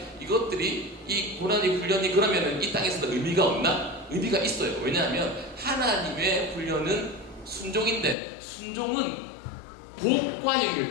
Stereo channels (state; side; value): drops out; right; at 8.2 s